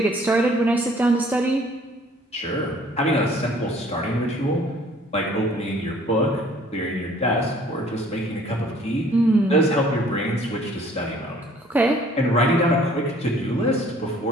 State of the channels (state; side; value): normal; both; correlation 0.56